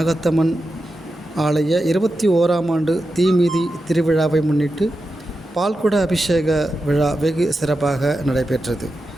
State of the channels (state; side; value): normal; both; correlation 0.90